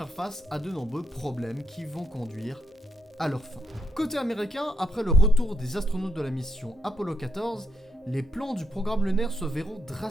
face à de nombreux problèmes qui vont conduire à leur fin. Côté américain, après le retour des astronautes de la mission Apollo 14, les plans du programme lunaire se verront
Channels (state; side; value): normal; both; correlation 0.81